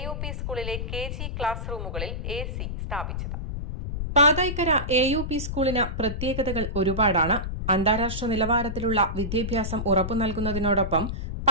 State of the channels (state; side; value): noise; left; rumble, 4 dB below the sound